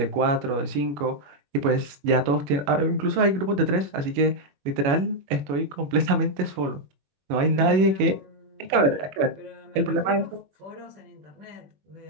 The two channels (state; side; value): late; left; 21 ms